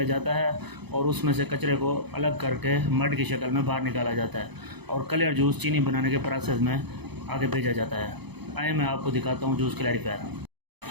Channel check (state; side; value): late; left; 0.99 ms